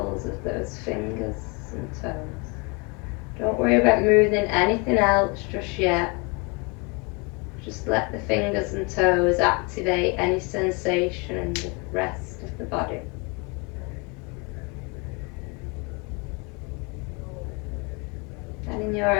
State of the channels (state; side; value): quieter; right; 30.1 dB